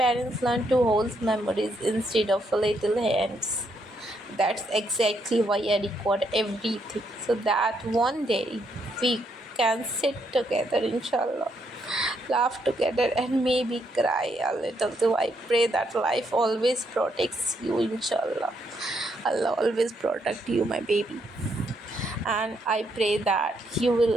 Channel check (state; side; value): normal; both; correlation 0.75